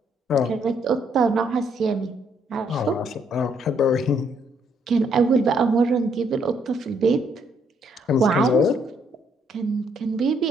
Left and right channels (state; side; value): normal; both; correlation 0.70